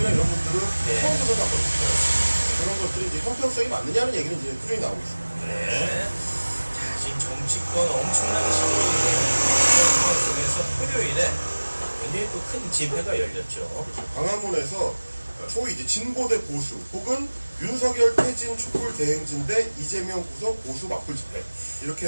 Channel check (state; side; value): inverted; both; correlation -1.00